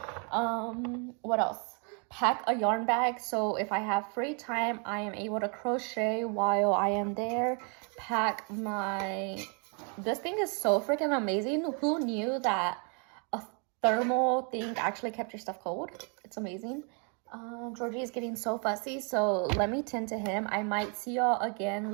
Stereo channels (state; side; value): quieter; left; 37.8 dB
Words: What else? Pack a yarn bag so if I have free time, I am able to crochet while I am there. Pack my... This thing is so freaking amazing. Who knew that a thermal thing actually kept your stuff cold? It's amazing. Georgie is getting so fussy, so let me tend to him. I might see y'all again